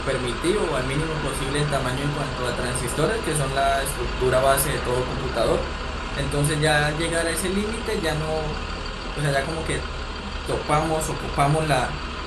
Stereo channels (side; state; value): both; identical; correlation 1.00